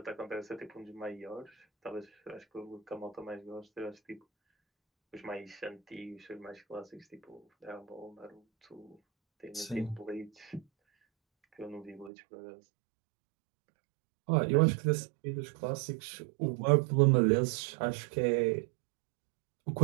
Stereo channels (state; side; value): drops out; left; at 12.1 s